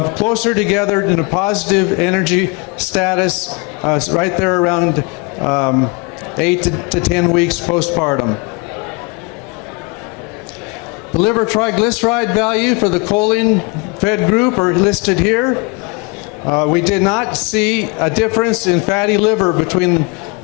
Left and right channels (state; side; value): quieter; right; 28.3 dB